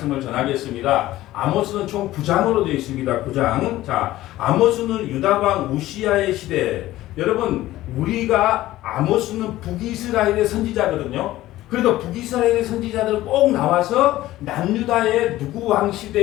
전하겠습니다. 아모스는 총 9장으로 되어 있습니다. 9장. 자, 아모스는 유다왕 우시야의 시대. 여러분, 우리가 아모스는 북이스라엘의 선지자거든요. 그래도 북이스라엘의 선지자들은 꼭 나와서 남유다의 누구 왕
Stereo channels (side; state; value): right; quieter; 15.7 dB